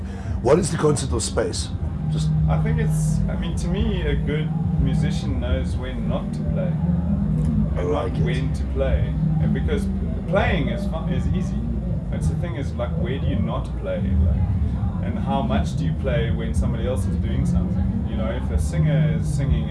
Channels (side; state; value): both; identical; correlation 1.00